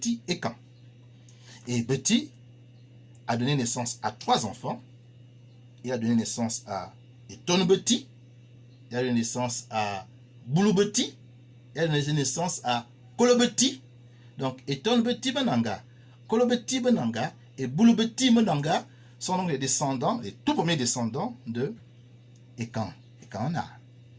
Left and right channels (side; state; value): both; identical; correlation 1.00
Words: Ekan. Et Beti a donné naissance à 3 enfants. Il a donné naissance à Etonbeti, il a donné naissance à Boulubeti, il a donné naissance à Kolobeti. Donc Etonbeti Benanga, Kolobeti Benanga et Boulubeti Benanga sont donc les descendants, les tout premiers descendants de Ekan, Ekanna,